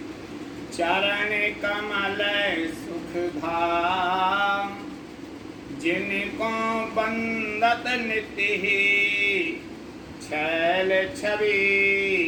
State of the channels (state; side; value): identical; both; correlation 1.00